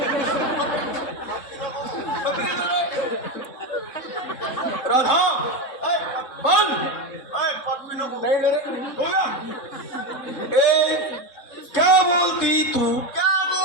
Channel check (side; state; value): right; late; 3.7 ms